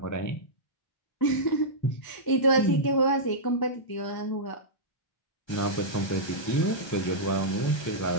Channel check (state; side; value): late; right; 1.3 ms